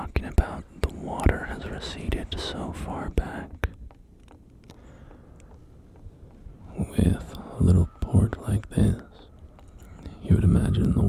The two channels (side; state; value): both; identical; correlation 1.00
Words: about, the water has receded so far back. With a little port like this, you would imagine the